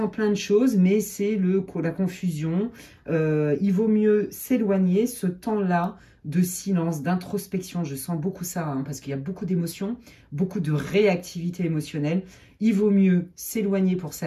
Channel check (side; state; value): both; identical; correlation 1.00